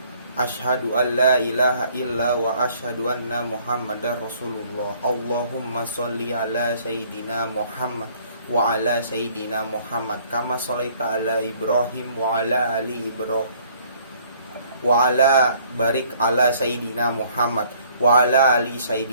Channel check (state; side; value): inverted; both; correlation -0.60